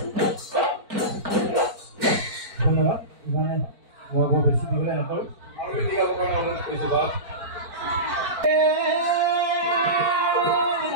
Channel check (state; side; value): late; left; 4.5 ms